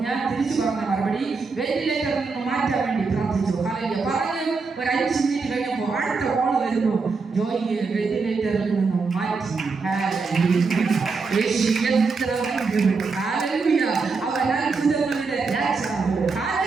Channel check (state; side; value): quieter; left; 4.5 dB